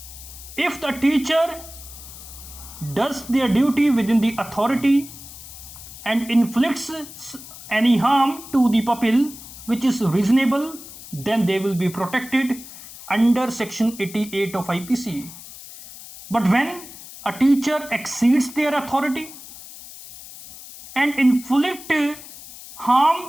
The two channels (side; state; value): left; noise; hiss, 16 dB below the sound